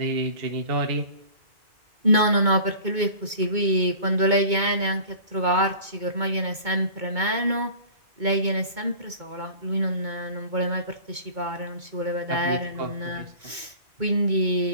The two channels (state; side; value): late; left; 2.2 ms